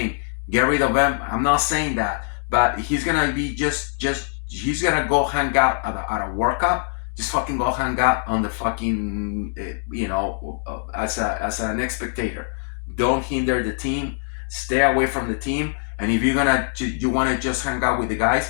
get rid of him. I'm not saying that, but he's gonna be just he's gonna go hang out at a World Cup. Just fucking go hang out on the fucking as an spectator. Don't hinder the team. Stay away from the team. And if you wanna just hang out with the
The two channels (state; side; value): silent; right; 63 dB below the other